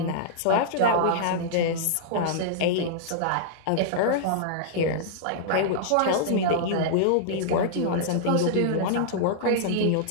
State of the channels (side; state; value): both; different; correlation -0.02